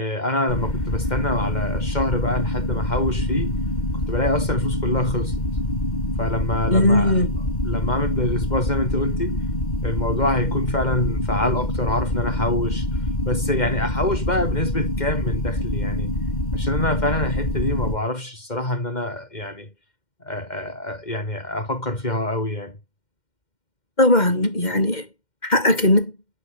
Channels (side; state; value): right; late; 2.1 ms